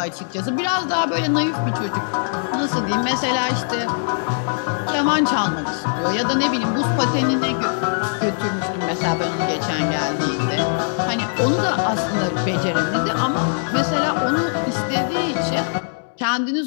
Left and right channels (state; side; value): silent; right; 65 dB below the other